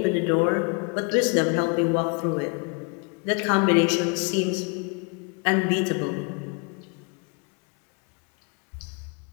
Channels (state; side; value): quieter; right; 33.6 dB